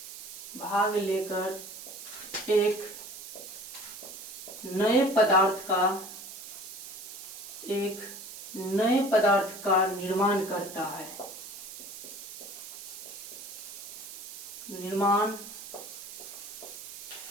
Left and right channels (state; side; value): noise; right; hiss, 11 dB below the sound